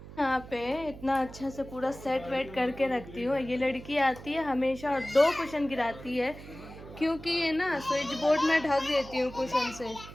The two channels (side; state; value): right; noise; hum, 15 dB below the sound